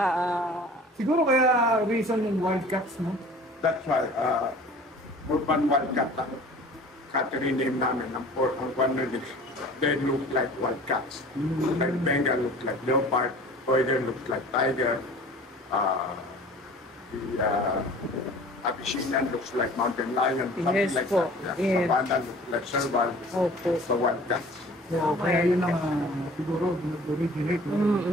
Siguro kaya reason yung Wildcats, no? That's why, Urban Wildcat lang. Catherine name namin, ang one of these, they look like wildcats. Like Bengal looks like leopard, Poider looks like tiger, the Abyssinian looks like mountain lion, something Yes like po. that. Yes. Savannah looks like serval, Opo. so wildcats. So, kaya yun ang siguro nag-originate yung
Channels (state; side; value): normal; both; correlation 0.46